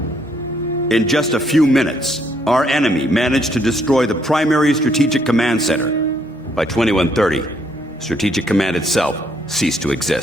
In just a few minutes, our enemy managed to destroy the primary Strategic Command Center. By 2130, Strategic Command itself ceased to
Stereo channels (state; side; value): normal; both; correlation 0.70